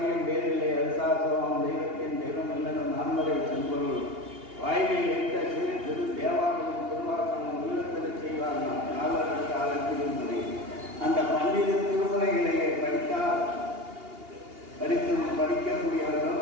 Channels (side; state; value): left; late; 2.8 ms